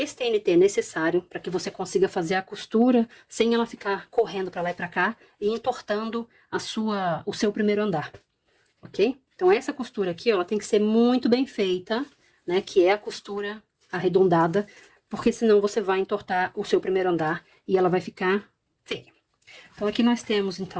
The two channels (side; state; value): both; identical; correlation 1.00